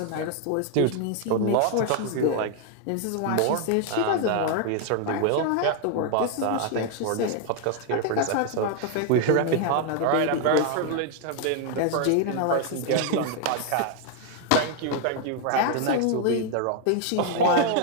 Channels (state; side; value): different; both; correlation 0.00